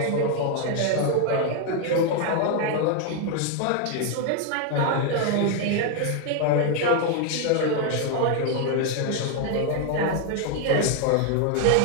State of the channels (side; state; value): both; different; correlation 0.01